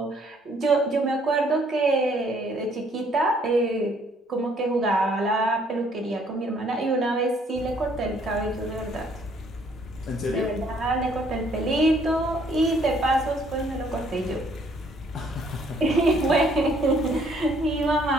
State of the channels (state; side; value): normal; both; correlation 0.64